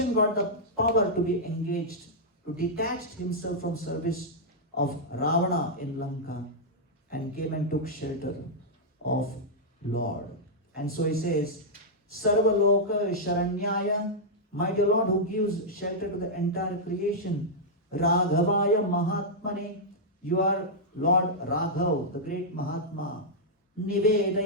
got the power to be engaged, to detach himself from service of Ravana in Lanka and came and took shelter of Lord. And so he says, Sarva Loka Sharanyaya, my dear Lord who gives shelter to the entire creation, Raghavaya Mahatmane, you are Lord Raghav, the great Mahatma,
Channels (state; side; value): normal; both; correlation -0.07